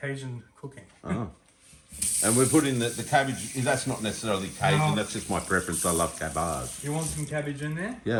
cooking. Oh. And we're putting the cabbage. That's not necessarily Cajun. No. That's just my preference. I love cabbage. You want some cabbage in there?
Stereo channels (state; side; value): identical; both; correlation 1.00